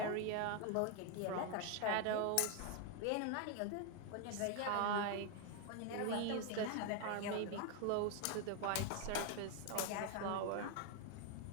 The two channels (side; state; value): both; different; correlation 0.01